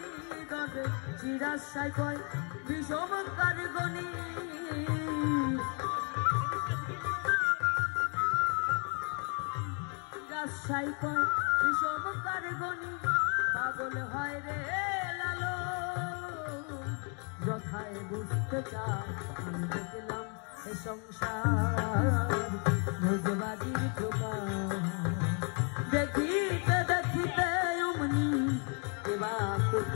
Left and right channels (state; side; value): quieter; right; 38.5 dB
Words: তবে চিরাশাই কয় বিষম কারগনি। রাজশাহী কয় বিষম কারগনি, পাগল হয় রে লালো। যথায় বুঝতে চাই আমি দেখলাম এ সংসার ভোজবাদীর প্রকার। দেখিতে দেখিতে অমনি এবা